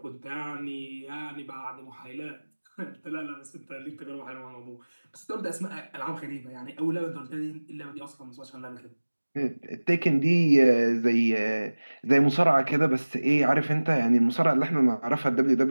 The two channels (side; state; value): both; inverted; correlation -1.00